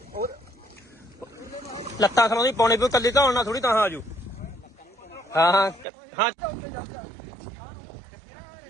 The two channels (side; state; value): left; drops out; at 5.9 s